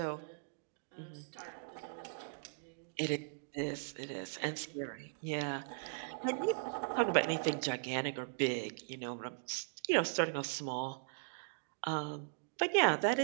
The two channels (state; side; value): silent; left; digital silence